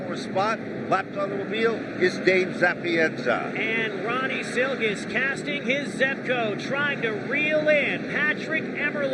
spot. Lapped automobile is Dave Zapienza. And Ronnie Silk is casting his Zepco, trying to reel in Patrick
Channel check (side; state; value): both; identical; correlation 1.00